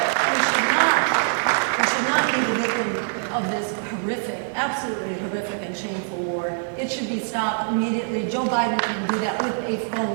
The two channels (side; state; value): left; silent; digital silence